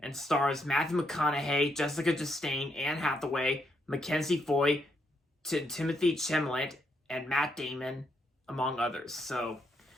and stars Matthew McConaughey, Jessica Chastain, Anne Hathaway, Mackenzie Foy, Timothy Chalamet, and Matt Damon, among others. So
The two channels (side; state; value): both; normal; correlation 0.77